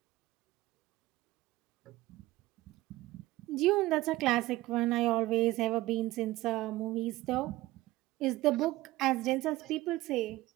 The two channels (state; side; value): quieter; left; 17.9 dB